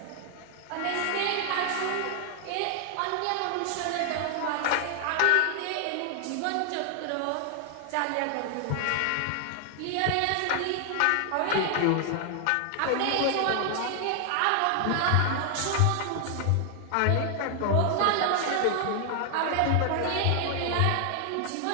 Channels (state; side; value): different; both; correlation 0.00